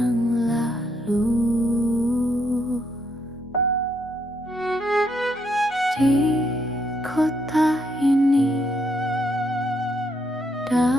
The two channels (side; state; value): both; normal; correlation 0.75